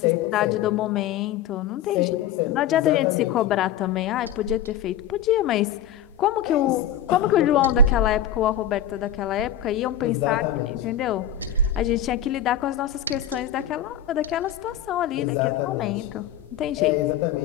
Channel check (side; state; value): right; quieter; 8.9 dB